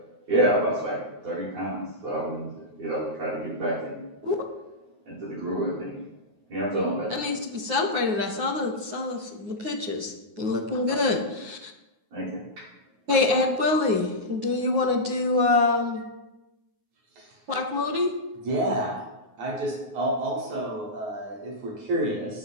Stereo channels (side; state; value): left; late; 9.5 ms